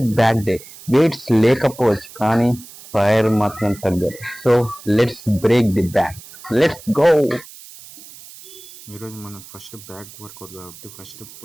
బ్యాక్ డే. వెయిట్స్ లేకపోవచ్చు కానీ ఫైర్ మాత్రం తగ్గదు. So let's break the back. Let's go. ఈరోజు మనం ఫస్ట్ బ్యాక్ వర్కౌట్ కాబట్టి ఫస్ట్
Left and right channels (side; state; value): right; noise; hiss, 18 dB below the sound